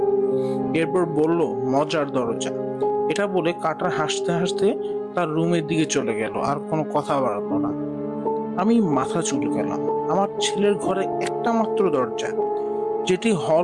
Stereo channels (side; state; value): both; identical; correlation 1.00